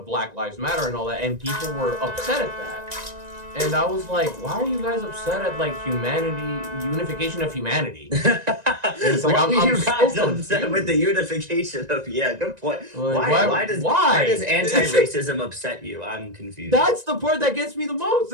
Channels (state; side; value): late; left; 1.9 ms